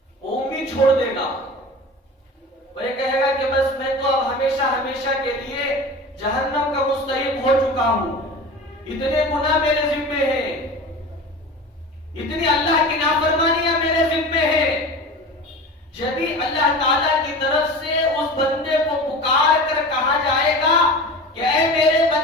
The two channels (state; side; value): normal; both; correlation 0.34